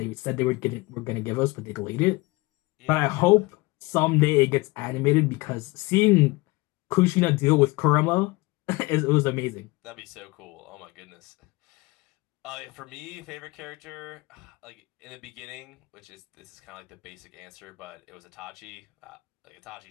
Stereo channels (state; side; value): quieter; right; 23.4 dB